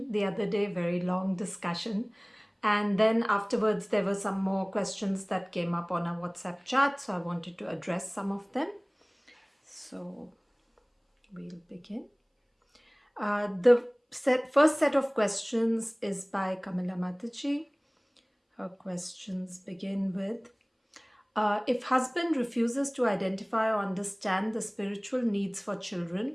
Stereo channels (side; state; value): both; identical; correlation 1.00